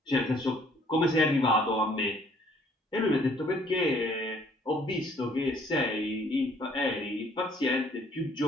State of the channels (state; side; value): normal; both; correlation 0.61